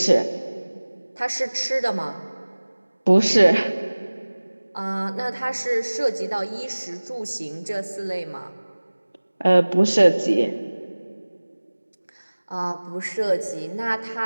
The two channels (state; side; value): inverted; both; correlation -1.00